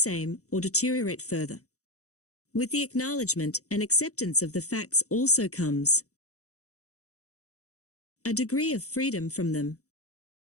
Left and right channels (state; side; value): late; right; 0.65 ms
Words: or deteriorate further. With the acknowledgement and acceptance of the facts also comes a degree of freedom from them.